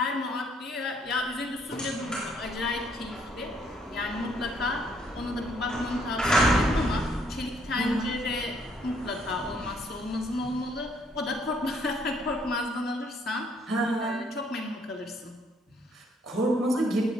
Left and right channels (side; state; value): both; normal; correlation 0.68